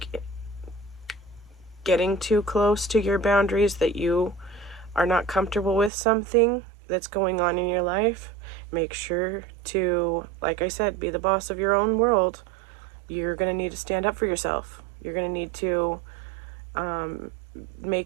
getting too close to your boundaries, that you are not comfortable with something that's going on in your life, make sure to, like I said, be the boss of your own world. You're going to need to stand up for yourself. You're going to need to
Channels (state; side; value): drops out; left; at 5.9 s